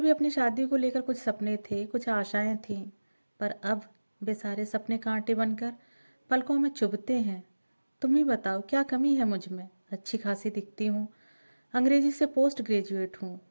अपनी शादी को लेकर कुछ सपने थे, कुछ आशाएं थीं, पर अब वे सारे सपने कांटे बनकर पलकों में चुभते हैं। तुम ही बताओ, क्या कमी है मुझ में। अच्छी खासी दिखती हूँ, अंग्रेजी से पोस्ट ग्रेजुएट हूँ,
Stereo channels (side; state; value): both; inverted; correlation -1.00